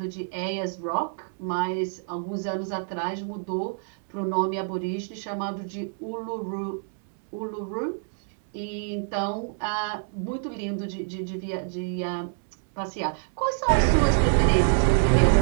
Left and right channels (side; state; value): left; silent; digital silence